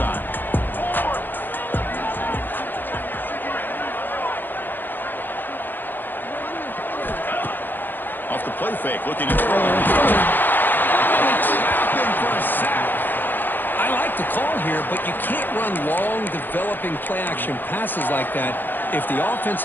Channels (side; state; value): right; late; 0.091 ms